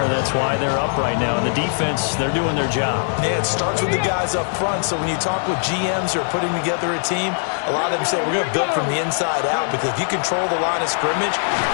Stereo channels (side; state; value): right; silent; digital silence